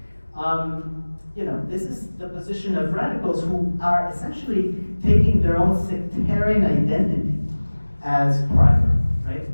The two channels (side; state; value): both; inverted; correlation -1.00